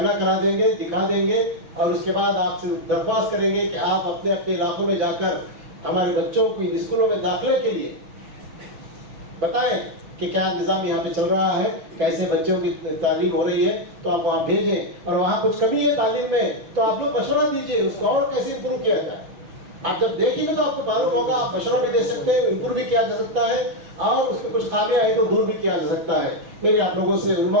करा देंगे, दिखा देंगे, और उसके बाद आपसे दरख्वास्त करेंगे कि आप अपने अपने इलाकों में जाकर हमारे बच्चों को स्कूलों में दाखिले के लिए बताएं कि क्या निज़ाम यहाँ पे चल रहा है, कैसे बच्चों की तालीम हो रही है। तो आप वहाँ भेजें, और वहाँ कुछ कमी है तालीम में तो आप लोग मशवरा दीजिए, उसको और कैसे इम्प्रूव किया जाए। आप जब देखेंगे तो आपको मालूम होगा, आप मशवरा भी दे सकते हैं, इम्प्रूव भी किया जा सकता है, और उसमें कुछ खामियां है तो दूर भी किया जा सकता है। मेरे आप लोगों से, उलमा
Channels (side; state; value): left; late; 6.2 ms